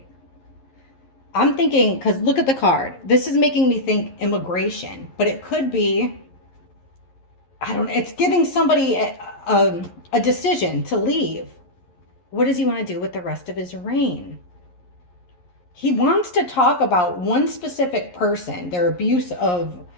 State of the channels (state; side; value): late; right; 11 ms